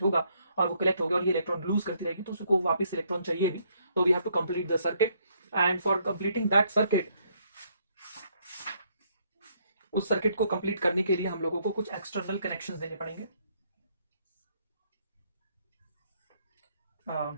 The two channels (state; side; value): inverted; both; correlation -0.70